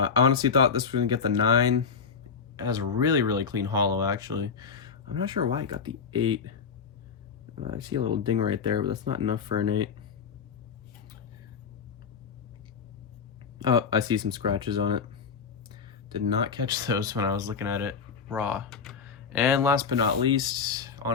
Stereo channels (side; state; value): right; quieter; 5.9 dB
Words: honestly thought this was going to get the 9. It has a really, really clean holo, actually. I'm not sure why it got the 8. I see a little ding right there, but that's not enough for an 8. Oh, I see some scratches on it. Did not catch those when I was looking at it raw. And last but not least,